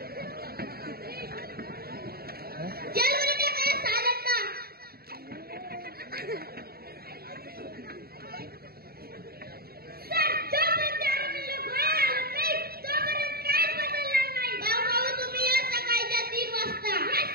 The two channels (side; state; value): left; late; 0.45 ms